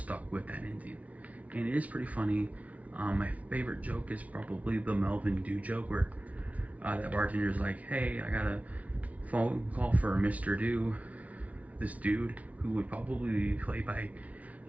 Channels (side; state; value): left; late; 0.068 ms